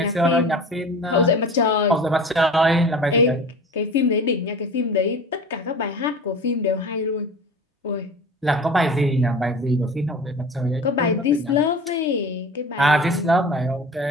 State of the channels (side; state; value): both; normal; correlation 0.37